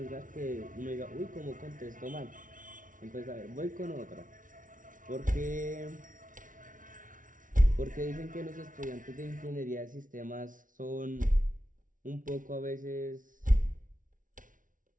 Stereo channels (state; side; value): late; left; 0.38 ms